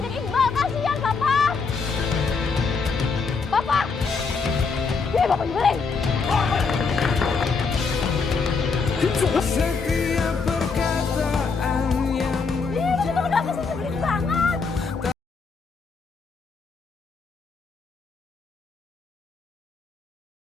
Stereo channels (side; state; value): right; quieter; 4.8 dB